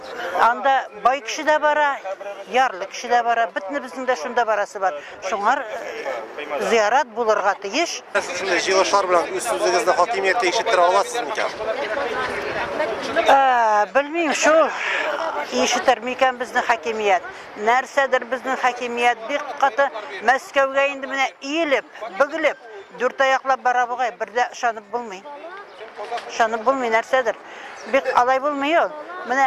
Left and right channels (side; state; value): both; identical; correlation 1.00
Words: Анда бай кеше дә бара, ярлы кеше дә бара, битне безнең дә шунда барасы бар. Шуңар зиярат булырга тиеш. Шундай җыелышлар белән үз сүзегезне хакимиятта ишеттера аласызмы икән? Белмим, шул ишетер микән безнең хакимият. Нәрсәдер безнең хакимият бик каты Мәскәүгә инде менә иелеп, бөгелеп, дүрт аяклап бара бугай, бердә ышанып булмый. Ышанып булмый нәрсәдер. Бик алай булмый ул.